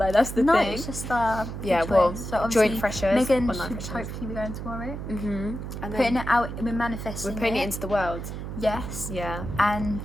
that's the thing. No, it's just so joint freshers. Megan should hopefully be going tomorrow. And putting it out, we're manifesting. We're putting it into the world. Yes. Yeah. And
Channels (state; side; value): noise; right; hum, 7 dB below the sound